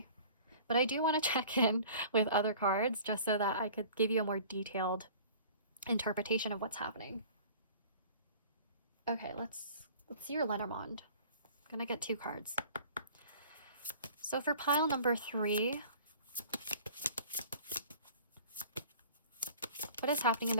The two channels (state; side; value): inverted; both; correlation -0.46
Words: But I do want to check in with other cards just so that I could give you a more detailed interpretation of what's happening. Okay, let's see your Lenormand. I'm gonna get 2 cards. So for pile number 3, what is happening in